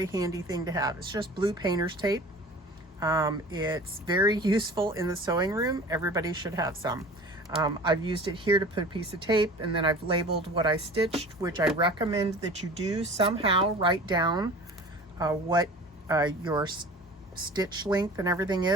handy thing to have. It's just blue painter's tape. It's very useful in the sewing room. Everybody should have some. I've used it here to put a piece of tape, and then I've labeled what I stitched, which I recommend that you do somehow write down what your stitch length and everything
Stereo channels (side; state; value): both; normal; correlation 0.41